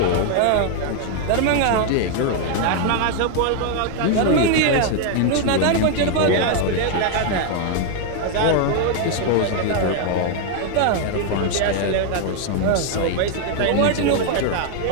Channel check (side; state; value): both; different; correlation 0.00